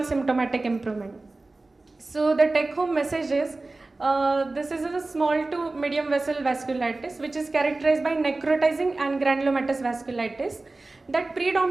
symptomatic improvement. So the take-home message is, this is a small to medium vessel vasculitis which is characterized by necrotizing and granulomatous vasculitis that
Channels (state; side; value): quieter; left; 3.2 dB